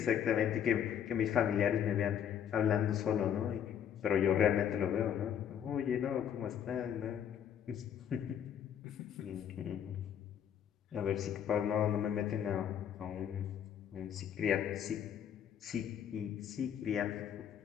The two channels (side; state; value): right; quieter; 9.0 dB